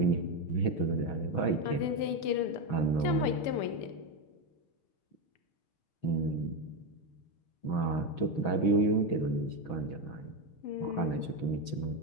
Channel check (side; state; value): right; late; 6.2 ms